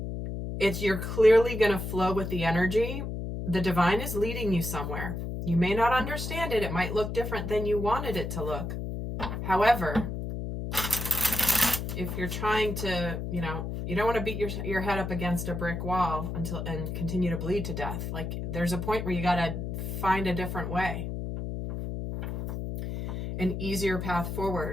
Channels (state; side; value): noise; left; hum, 4 dB below the sound